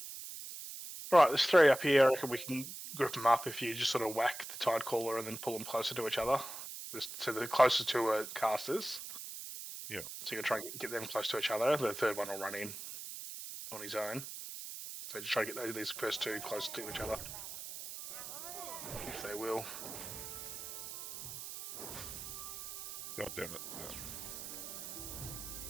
Right, there's 3 up here. I reckon we can group them up if you just sort of whack the Tide Caller and then pull them closer to each other. So the closer to casters. Yeah. So you're trying to get them close to each other. The third one will run in on his own. So just try to get these first 2 close to each other. If they will. God damn it. No.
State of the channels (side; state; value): right; noise; hiss, 9 dB below the sound